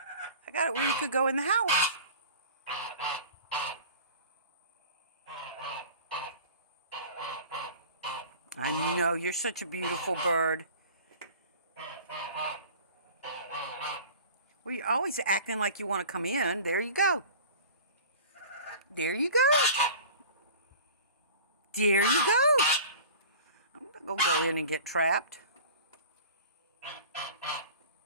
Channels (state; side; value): inverted; both; correlation -0.41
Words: I got it where you could go in the house. I know, you're such a beautiful bird. Well, you're always acting like you want to come in. There you go. There you go. There you go. I'm not going to go in and get trapped.